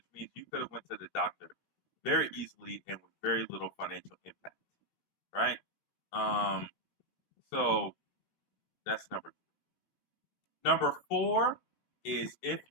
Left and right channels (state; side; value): late; right; 18 ms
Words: means you could have went to the doctor very easily and with very little financial impact, right? So that's number three. Number four is if